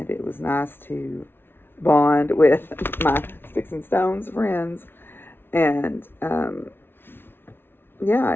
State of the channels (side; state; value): right; late; 0.11 ms